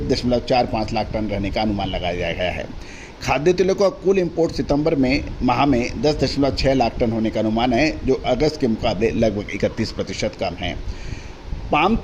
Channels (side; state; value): both; identical; correlation 1.00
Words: लाख टन रहने का अनुमान लगाया गया है। खाद्य तेलों का कुल इंपोर्ट सितंबर माह में 10.6 लाख टन होने का अनुमान है, जो अगस्त के मुकाबले लगभग 31% कम है। पाम